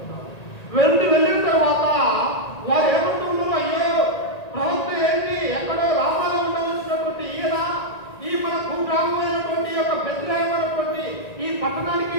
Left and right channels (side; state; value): right; late; 1.9 ms